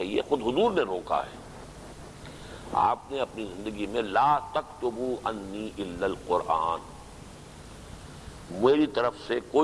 ہے، خود حضور نے روکا ہے۔ آپ نے اپنی زندگی میں لا تکتبوا انی الا القرآن، میری طرف سے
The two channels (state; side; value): identical; both; correlation 1.00